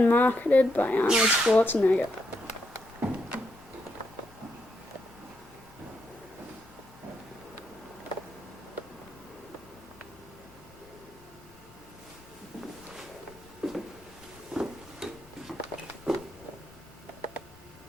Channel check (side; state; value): left; noise; hum, 26 dB below the sound